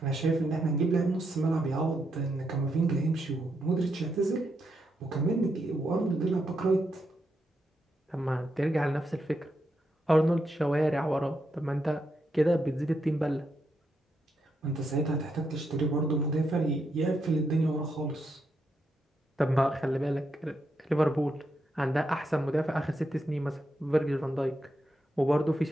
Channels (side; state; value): both; normal; correlation 0.82